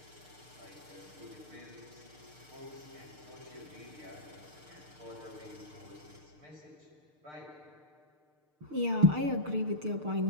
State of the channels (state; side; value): late; left; 6.6 ms